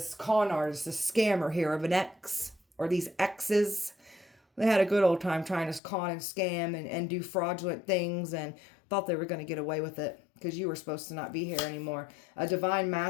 con artist, this scammer here of an ex, or these exes. They had a good old time trying to con and scam and do fraudulent things and thought they were going to get away with it because you were supposed to not be here anymore. A divine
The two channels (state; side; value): drops out; right; at 5.8 s